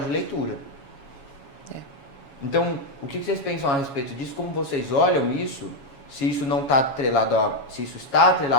de leitura. Então, o que vocês pensam a respeito disso? Como vocês olham isso? Se isso não está atrelado se isso está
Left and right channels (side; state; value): right; late; 7.2 ms